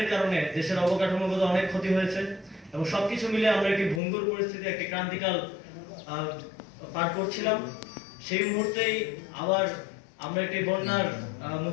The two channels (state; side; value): drops out; right; at 4.0 s